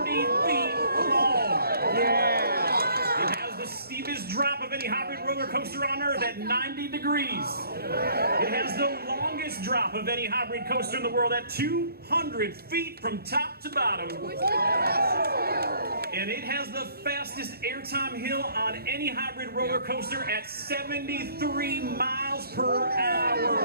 long. Yeah. It has the steepest drop of any hybrid roller coaster on Earth at 90 degrees. It has the longest drop of any hybrid coaster in the world at 200 feet from top to bottom. And it has the fastest airtime hill on any hybrid roller coaster at 73 miles per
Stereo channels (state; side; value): inverted; both; correlation -0.59